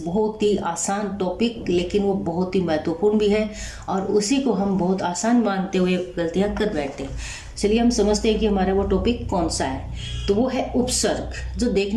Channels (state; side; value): identical; both; correlation 1.00